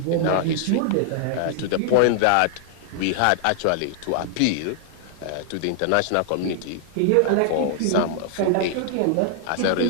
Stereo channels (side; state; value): both; different; correlation 0.00